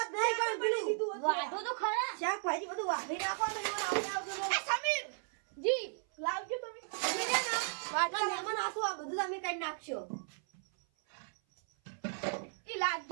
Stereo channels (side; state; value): left; silent; 54 dB below the other